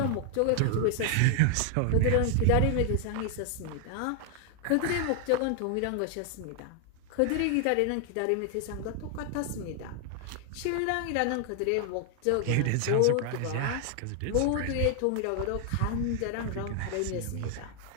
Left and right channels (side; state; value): both; different; correlation 0.00